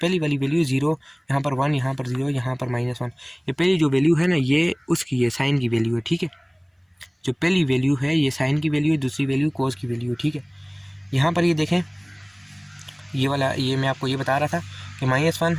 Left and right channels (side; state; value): both; identical; correlation 1.00